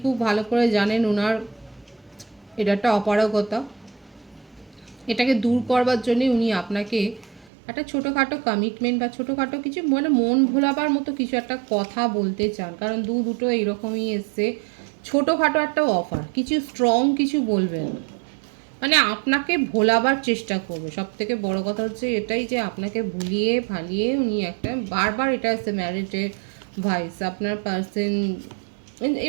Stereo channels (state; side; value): drops out; left; at 7.5 s